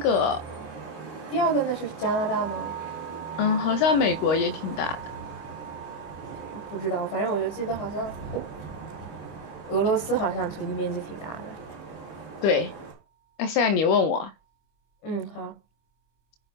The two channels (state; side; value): late; right; 25 ms